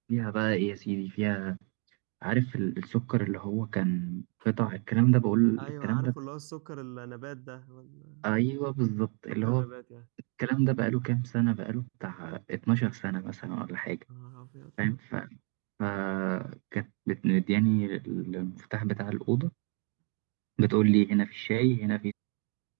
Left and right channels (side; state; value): left; quieter; 38.0 dB